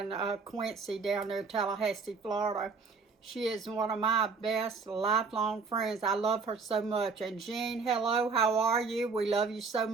Quincy, down there in Tallahassee, Florida. She is one of my best lifelong friends. I love her so much. And Jean, hello, how are you? We love you so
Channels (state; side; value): quieter; left; 4.7 dB